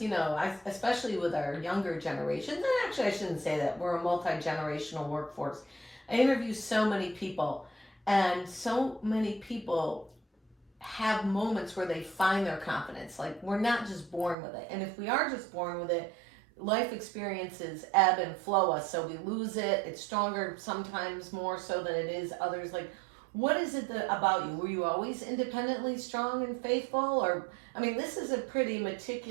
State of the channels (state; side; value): drops out; left; at 14.4 s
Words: especially with our younger generations, and actually I shouldn't say that, we're a multi-generational workforce. I interview so many people, and so many people have moments where they find their confidence. Like, we're not just born with it. And if we are just born with it, life experiences ebb and flow us. So we lose it. It's stronger sometimes more so than it is others. Like, what is it about you? Were you always independently strong and faithful? Or, this is a pretty